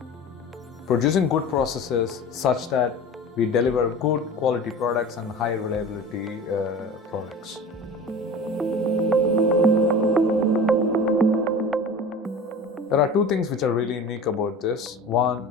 producing good processes such that we deliver good quality products and high reliability products. There are two things which are really unique about this.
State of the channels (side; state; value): both; normal; correlation 0.36